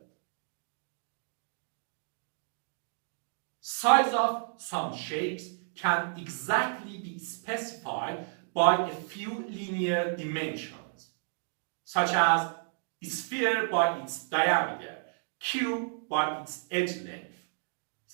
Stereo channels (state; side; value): silent; left; digital silence